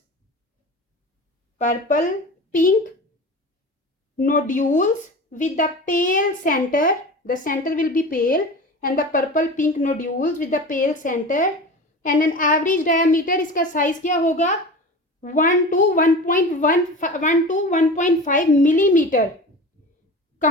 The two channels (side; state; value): both; normal; correlation 0.33